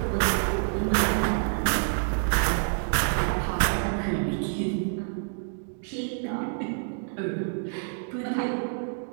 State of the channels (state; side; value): silent; left; digital silence